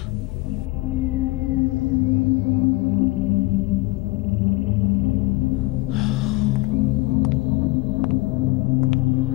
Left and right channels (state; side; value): quieter; right; 21.7 dB